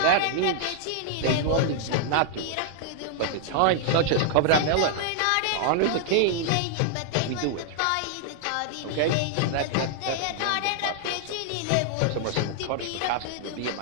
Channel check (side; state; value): both; different; correlation -0.01